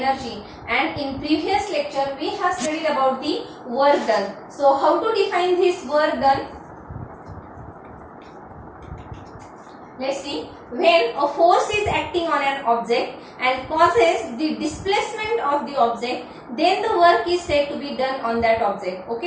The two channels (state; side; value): identical; both; correlation 1.00